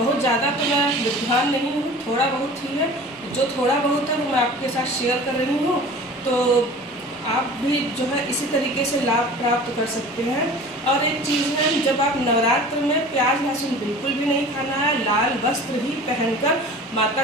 ज़्यादा तो मैं विद्वान नहीं हूँ, थोड़ा बहुत ही है। जो थोड़ा बहुत है वो मैं आपके साथ शेयर कर रही हूँ। तो आप भी जो है इसी तरीके से लाभ प्राप्त कर सकते हैं। और एक चीज़ है, जब आप नवरात्र में प्याज लहसुन बिल्कुल भी नहीं खाना है, लाल वस्त्र ही पहनकर माता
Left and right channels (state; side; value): normal; both; correlation 0.41